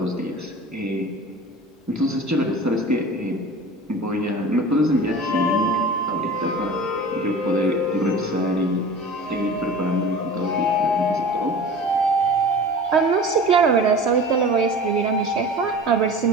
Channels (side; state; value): both; normal; correlation 0.37